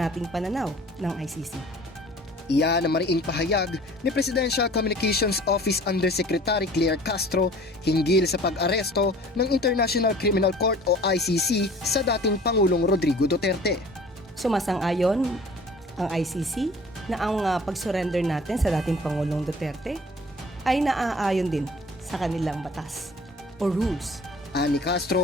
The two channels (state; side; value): normal; both; correlation 0.48